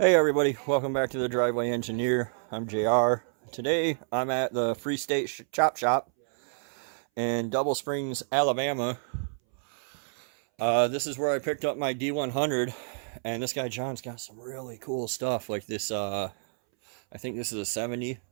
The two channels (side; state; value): left; silent; 59 dB below the other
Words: everybody, welcome back to the Driveway Engineer. I'm JR. Today I'm at the Free State Chop Shop in Double Springs, Alabama. This is where I picked up my D100, and this guy John's got some really cool stuff like this. I think this is a 70.